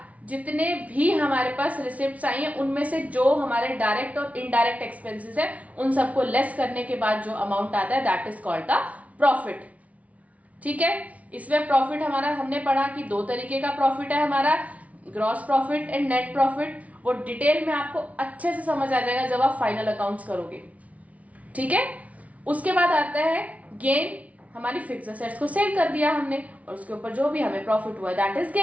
जितने भी हमारे पास रिसिप्ट्स आई हैं उनमें से जो हमारे डायरेक्ट और इनडायरेक्ट एक्सपेंसेस है उन सबको लेस करने के बाद जो अमाउंट आता है that is called the profit. ठीक है, इसमें प्रॉफिट हमारा हमने पढ़ा कि 2 तरीके का प्रॉफिट है हमारा, gross profit and net profit. वो डिटेल में आपको अच्छे से समझ आ जाएगा जब आप फाइनल अकाउंट्स करोगे। ठीक है, उसके बाद आता है गेन। हमारी फिक्स असेट्स को सेल कर दिया हमने और उसके ऊपर जो भी हमें प्रॉफिट हुआ that is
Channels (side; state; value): left; late; 0.068 ms